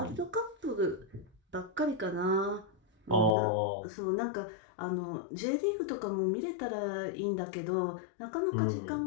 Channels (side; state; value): right; drops out; at 3.4 s